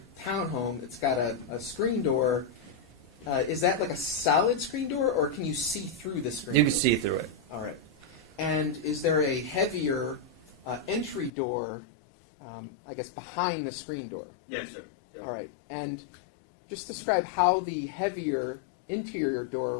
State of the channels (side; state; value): right; drops out; at 11.3 s